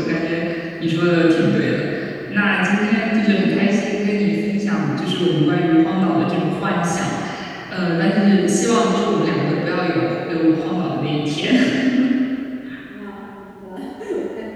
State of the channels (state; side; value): identical; both; correlation 1.00